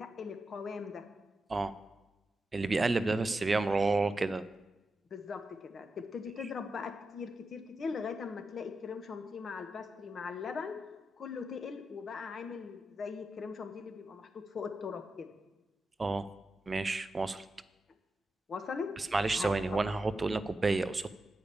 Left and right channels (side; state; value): both; normal; correlation 0.89